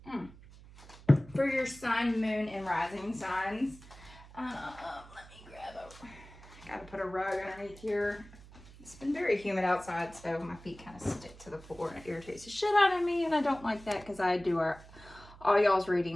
for your sun, moon, and rising signs. Let me grab I gotta put a rug underneath here. It's been very humid outside, so my feet kind of stick to the floor, and it irritates the shit out of me, and I don't like that because I do all y'all's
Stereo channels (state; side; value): noise; right; hum, 20 dB below the sound